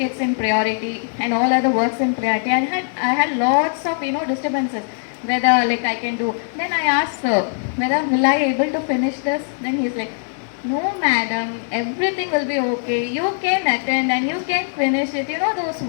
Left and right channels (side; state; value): right; silent; digital silence